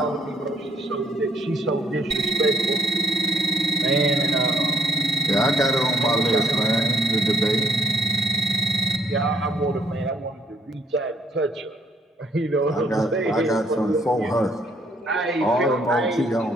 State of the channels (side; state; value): both; normal; correlation 0.70